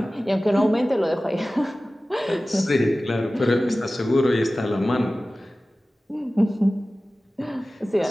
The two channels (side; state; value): both; normal; correlation 0.97